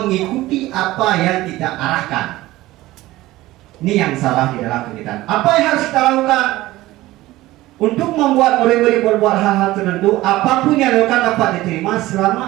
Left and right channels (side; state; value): left; quieter; 17.3 dB